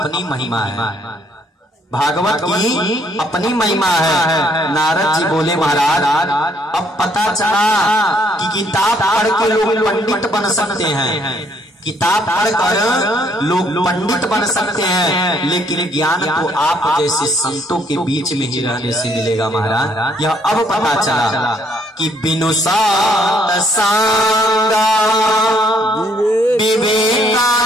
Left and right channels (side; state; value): both; normal; correlation 0.67